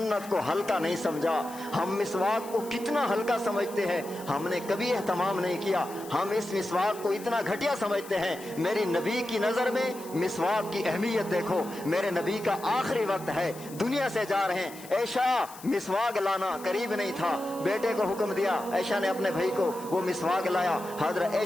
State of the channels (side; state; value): left; noise; hiss, 18 dB below the sound